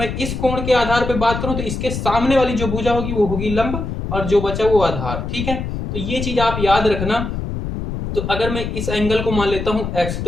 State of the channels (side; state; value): left; noise; rumble, 4 dB below the sound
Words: इस कोण के आधार पर बात करूं तो इसके सामने वाली जो भुजा होगी वो होगी लंब और जो बचा वो आधार। ठीक है, तो ये चीज आप याद रखना। तो अगर मैं इस एंगल को मान लेता हूं x,